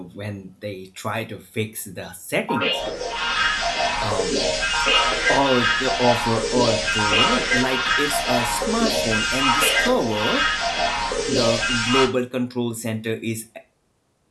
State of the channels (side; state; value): both; identical; correlation 1.00